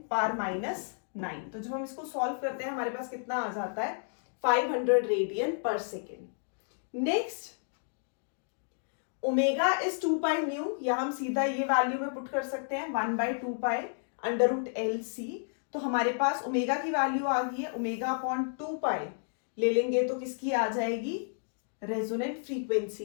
तो जब हम इसको सॉल्व करते हैं हमारे पास कितना आ जाता है 500 radian per second. Next omega is 2 pi new, या हम सीधा ये वैल्यू में पुट कर सकते हैं 1/2 पाई √LC। तो हमारे पास ओमेगा की वैल्यू आ गई है ओमेगा अपॉन 2 पाई ले लेंगे तो किसकी आ जाएगी? रेजोनेंट फ्रीक्वेंसी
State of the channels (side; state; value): right; silent; digital silence